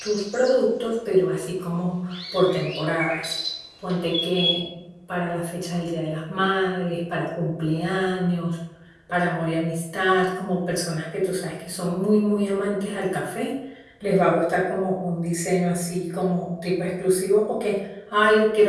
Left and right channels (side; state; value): both; identical; correlation 1.00